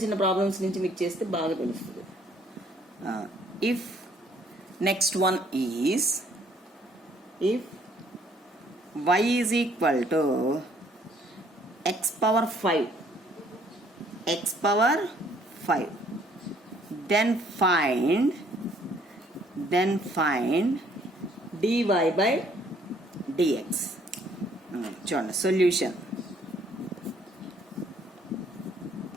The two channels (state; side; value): normal; both; correlation 0.62